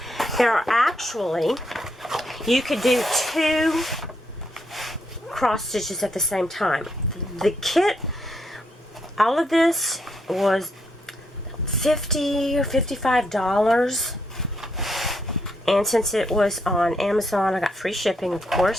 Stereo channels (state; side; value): normal; both; correlation 0.77